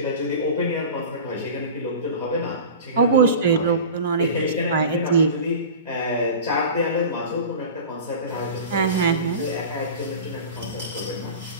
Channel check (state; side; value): inverted; both; correlation -0.35